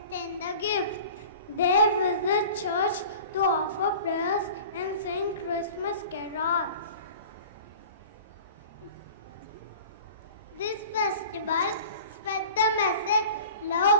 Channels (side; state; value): both; inverted; correlation -0.40